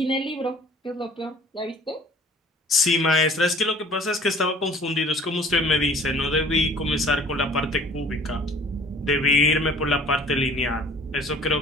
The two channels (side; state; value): both; normal; correlation 0.50